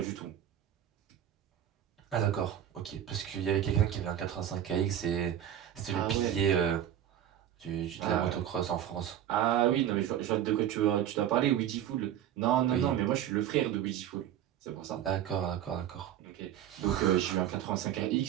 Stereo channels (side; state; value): left; quieter; 10.8 dB